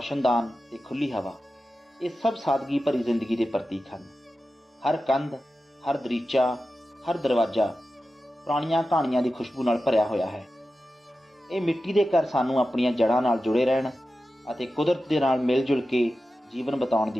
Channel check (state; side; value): normal; both; correlation 0.93